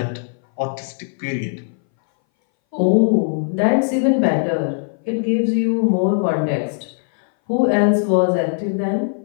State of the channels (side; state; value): right; silent; 62 dB below the other